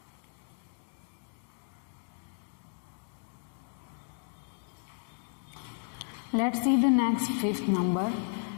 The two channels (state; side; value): silent; right; digital silence